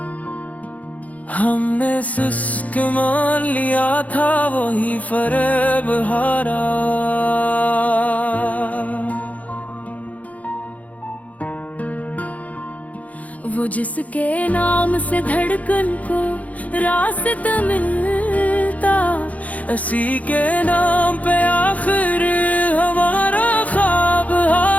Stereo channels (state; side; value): late; right; 0.071 ms